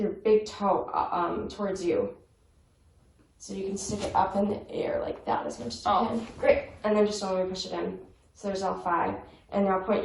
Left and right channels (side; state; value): both; identical; correlation 1.00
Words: your big toe towards you? So you can stick it up in the air like that as much as you can. Great, and then just don't let me push it in. So there's all five. And now point